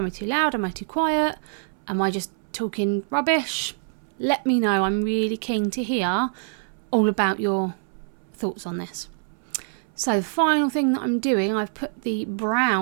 I too loud? Am I too quiet? Am I just talking rubbish, let me know. I'm really keen to hear all about your thoughts on this. So the final thing that I'm doing, I've put the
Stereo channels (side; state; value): left; silent; 62 dB below the other